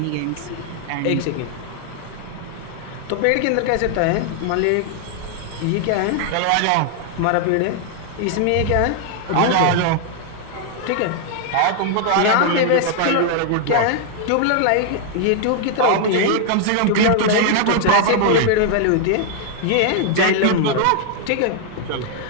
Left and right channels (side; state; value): both; different; correlation 0.00